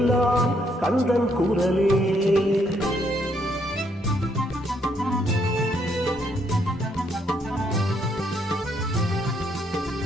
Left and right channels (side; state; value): both; normal; correlation 0.72